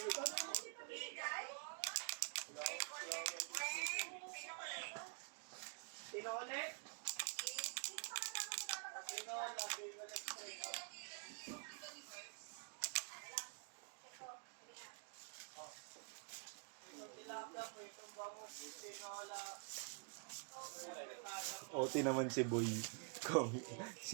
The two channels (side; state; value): left; quieter; 39.0 dB